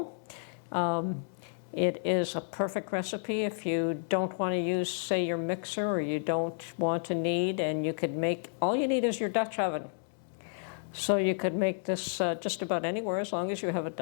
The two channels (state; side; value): silent; right; digital silence